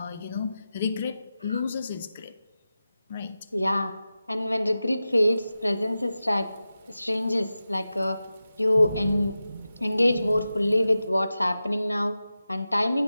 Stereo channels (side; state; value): both; inverted; correlation -0.93